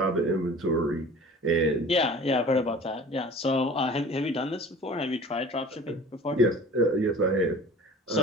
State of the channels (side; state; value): both; normal; correlation 0.43